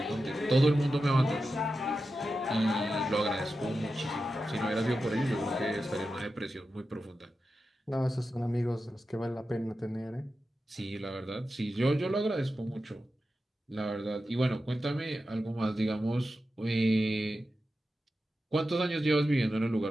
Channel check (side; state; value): both; normal; correlation 0.91